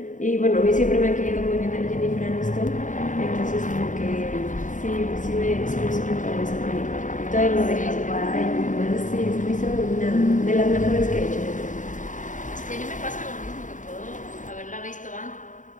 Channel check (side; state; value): right; late; 0.37 ms